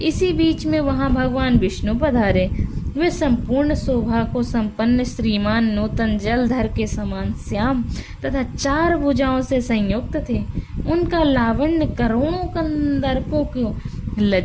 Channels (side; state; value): both; identical; correlation 1.00